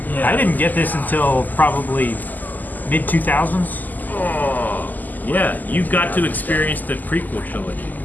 I didn't get this until probably mid 2000s. Oh, yeah, you got to experience the prequel trilogy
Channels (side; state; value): right; late; 0.084 ms